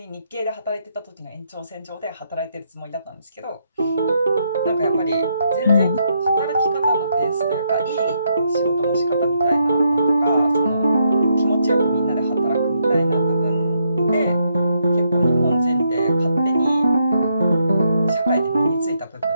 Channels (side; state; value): both; inverted; correlation -0.77